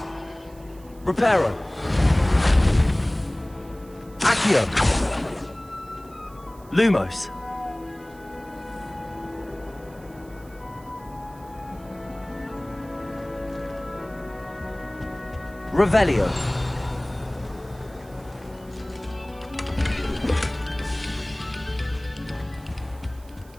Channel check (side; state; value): right; noise; hiss, 26 dB below the sound